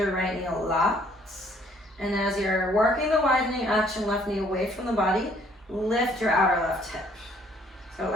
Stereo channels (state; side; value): normal; both; correlation 0.62